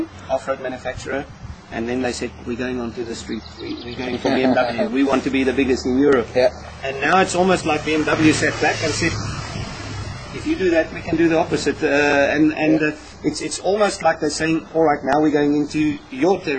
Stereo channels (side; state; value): both; identical; correlation 1.00